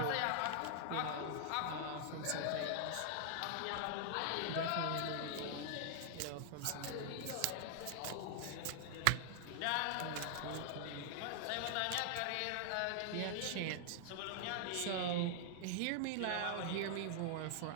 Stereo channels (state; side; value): different; both; correlation -0.01